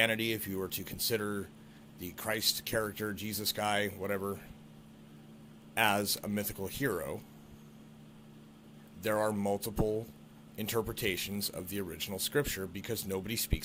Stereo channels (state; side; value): identical; both; correlation 1.00